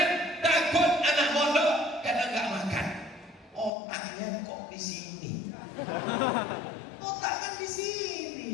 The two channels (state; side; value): drops out; right; at 3.7 s